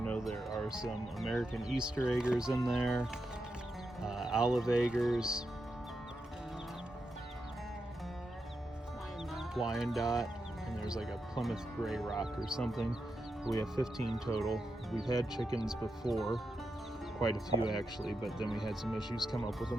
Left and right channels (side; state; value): both; normal; correlation 0.86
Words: there are some American Easter eggers in there, olive eggers, Wyandotte, and there's like a Plymouth Gray Rock or something. We have 15 total. We've had chickens before, quite a few actually, but then we had some issues come up with